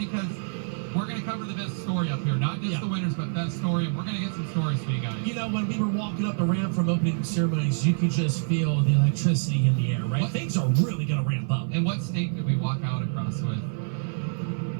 we're going to cover the best story up here. Not just the winners, but best story. And we're going to get some stories for you guys. You know, when we were walking up the ramp from opening ceremonies, you could just feel the electricity in the air, right? Things are really going to ramp up. And what state did we walk out across with?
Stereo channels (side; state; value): left; silent; 56 dB below the other